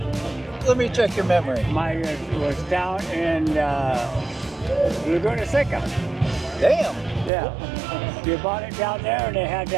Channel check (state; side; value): drops out; left; at 7.3 s